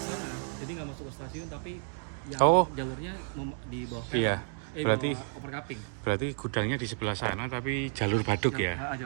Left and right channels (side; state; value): left; silent; 57 dB below the other